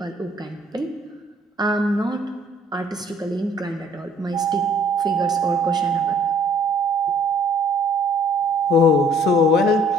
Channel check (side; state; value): both; normal; correlation 0.59